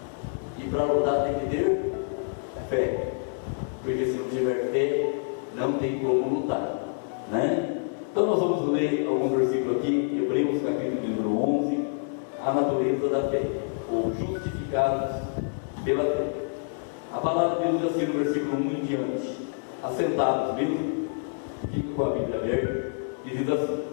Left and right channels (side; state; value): right; silent; digital silence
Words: E para lutar tem que ter fé. Porque se não tiver fé, não tem como lutar, né? Então nós vamos ler alguns versículos aqui, Hebreus capítulo número 11, a natureza da fé. ou justificados pela fé. A palavra de Deus diz assim no versículo 1 em diante: assentados mesmo, fica com a Bíblia aberta, e diz assim: